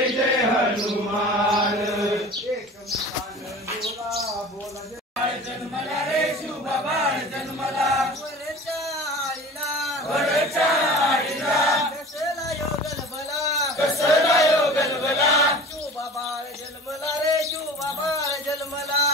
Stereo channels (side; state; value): both; normal; correlation 0.39